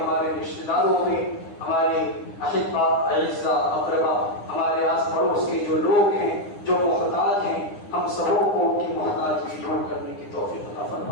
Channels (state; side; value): late; right; 9.8 ms